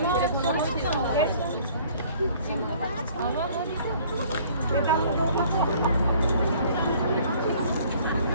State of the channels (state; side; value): inverted; both; correlation -0.55